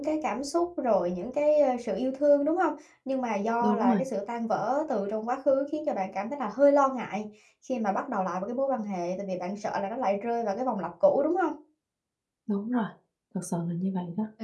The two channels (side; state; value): both; identical; correlation 1.00